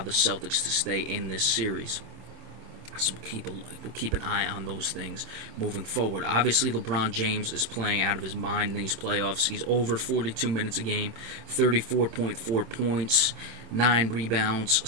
the Celtics to stay in this series. So we'll keep an eye on those things moving forward. Obviously, LeBron James is playing out of his mind in these playoffs. He's over 42 minutes a game, 34.4 points, 9 rebounds,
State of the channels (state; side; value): late; left; 25 ms